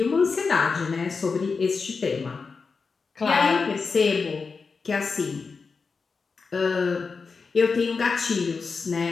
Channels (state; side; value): quieter; right; 4.8 dB